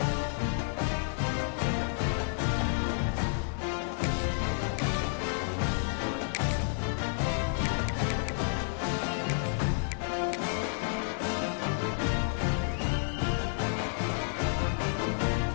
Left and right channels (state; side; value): silent; right; digital silence